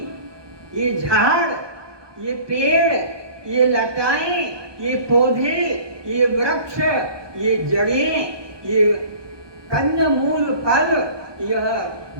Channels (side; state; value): left; late; 1.2 ms